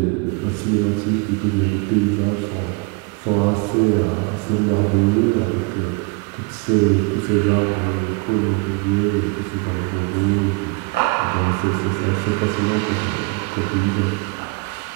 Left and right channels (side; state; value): left; quieter; 29.7 dB